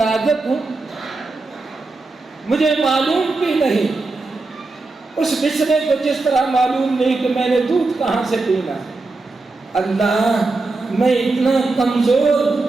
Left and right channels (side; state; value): left; quieter; 3.5 dB